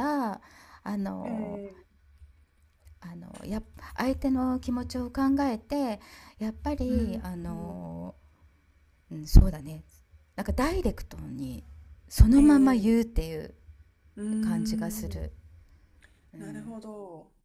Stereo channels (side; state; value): both; identical; correlation 1.00